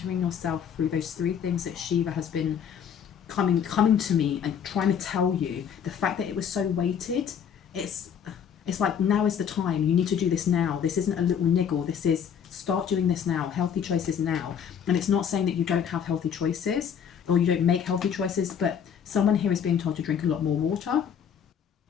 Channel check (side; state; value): right; quieter; 8.0 dB